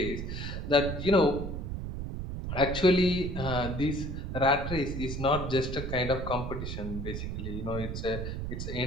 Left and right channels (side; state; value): right; noise; rumble, 4 dB below the sound